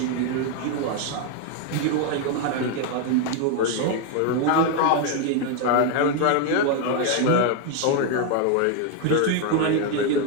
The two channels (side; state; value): both; different; correlation 0.01